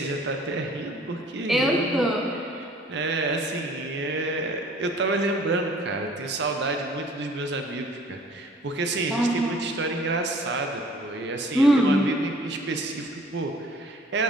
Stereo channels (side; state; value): both; normal; correlation 0.53